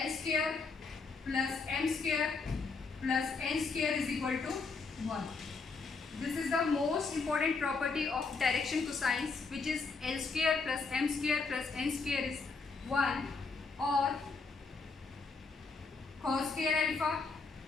square plus M square plus N square is equal to 1. This is the most important property of direction cosines, which is L square plus M square plus N square is 1, or cos square alpha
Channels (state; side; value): quieter; right; 4.4 dB